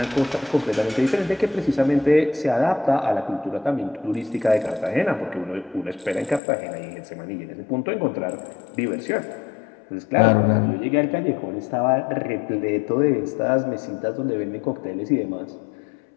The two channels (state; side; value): drops out; right; at 6.4 s